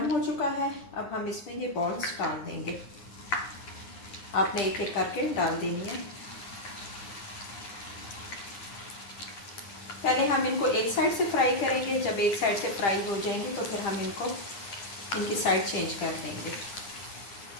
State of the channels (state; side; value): late; right; 10 ms